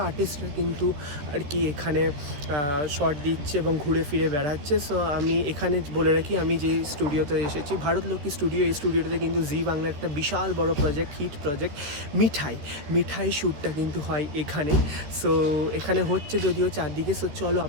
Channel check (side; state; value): left; late; 14 ms